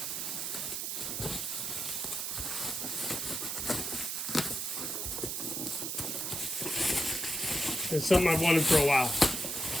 is something I've wanted for a while.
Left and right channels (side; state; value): right; noise; hiss, 2 dB below the sound